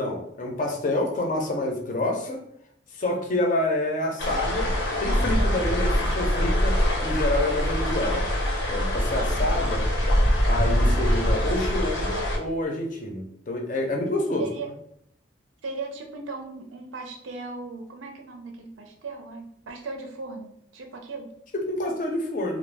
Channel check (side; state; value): both; normal; correlation 0.54